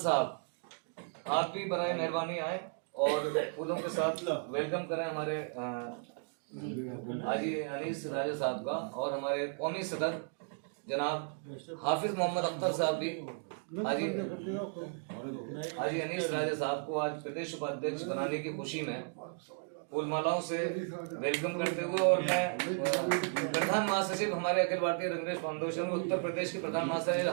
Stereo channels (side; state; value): left; silent; 55 dB below the other